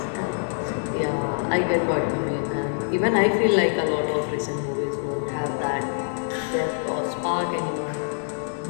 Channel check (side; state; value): right; silent; 62 dB below the other